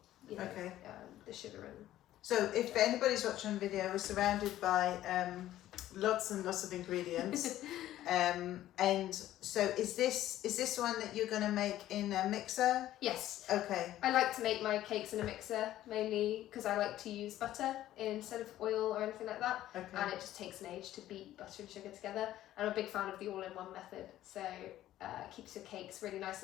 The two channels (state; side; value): quieter; right; 13.6 dB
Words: the sugar and. So if anybody's watching the video, we're surrounded by lots and lots of ingredients. And so is this one that you're going to make in a mixer? Yes. Okay. I like to make my cakes in a mixer, mainly because I like to use butter instead of oil or anything like that. Okay. And it just takes an age to beat butter and sugar together. I'm a big fan of the all-in-one method, so keeps your cakes really nice